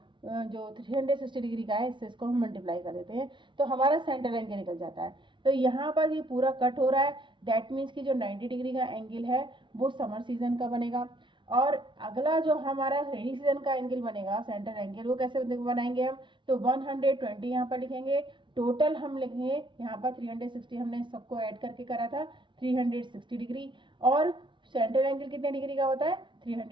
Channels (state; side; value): late; left; 0.24 ms